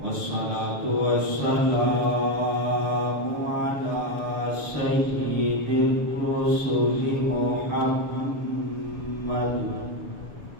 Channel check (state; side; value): late; left; 6.6 ms